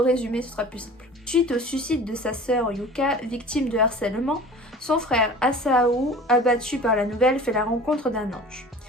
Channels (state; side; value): normal; both; correlation 0.42